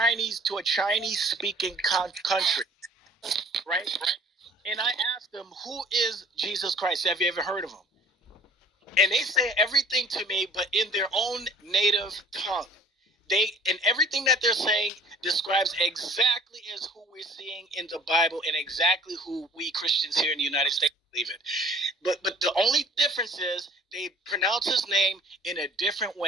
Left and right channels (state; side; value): normal; both; correlation 0.51